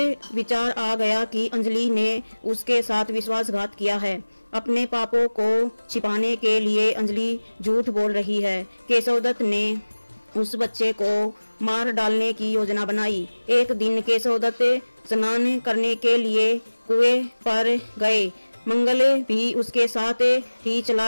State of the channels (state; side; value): inverted; both; correlation -1.00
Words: विचार आ गया कि अंजलि ने उसके साथ विश्वासघात किया है। अपने पापों को छिपाने के लिए अंजलि झूठ बोल रही है। केशव दत्त ने उस बच्चे को मार डालने की योजना बनाई। एक दिन केशव दत्त स्नान करने के लिए कुएं पर गए। मंगल भी उसके साथ ही